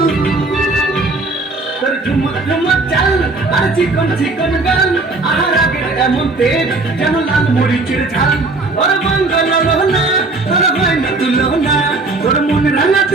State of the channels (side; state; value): left; quieter; 3.4 dB